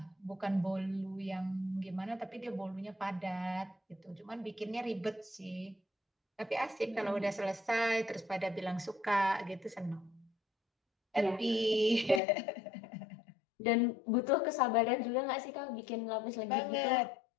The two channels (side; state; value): right; drops out; at 12.2 s